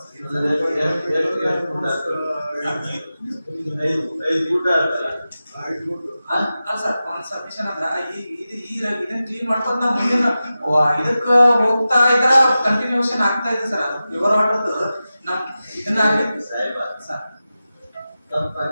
ಐದು ಫೂಟ್ ಆಗ್ತಲ್ಲ? ಅಲ್ಲ ಸರ್ ಒಂದು ಸಬ್ಮಿಷನ್ ಅಂದ್ರ ಇದನ್ನ ಕ್ಲೀನ್ ಮಾಡ್ಕೊಂಡ್ ನಾವು ಮುಂದಿನ ಇದಕ್ಕ ಹೋಗ್ತಾ ಇದ್ರ ಕಂಟಿನ್ಯೂಷನ್ ಆಗ್ತಾ ಇದೆ ಸರ್. ಅದು ಪ್ಯೂರ್ ವಾಟರ್ದು ನಮ್ ಇದನ್ನ ಆಗಿತ್ತು ಸಾಹೇಬ ಸರ್.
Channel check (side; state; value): both; inverted; correlation -0.94